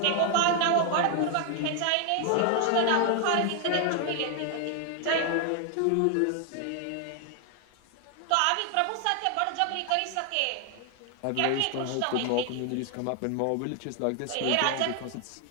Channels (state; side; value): different; both; correlation 0.00